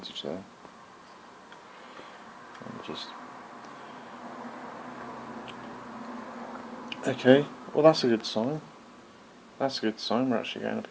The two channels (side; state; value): both; identical; correlation 1.00